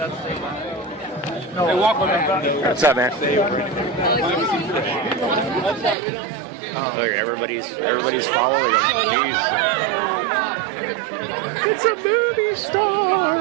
the... No, walk with me. What's up, man? Look, everybody's following him. Jeez. It's a movie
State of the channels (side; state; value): left; drops out; at 6.0 s